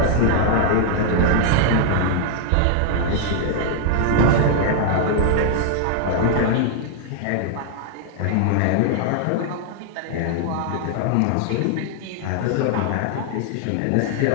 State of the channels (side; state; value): both; different; correlation 0.00